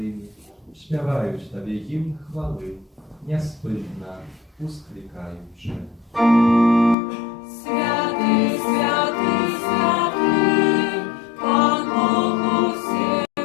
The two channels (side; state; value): right; drops out; at 7.0 s